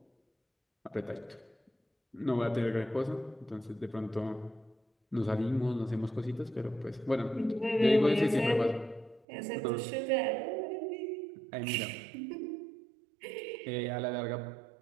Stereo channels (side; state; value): left; drops out; at 9.2 s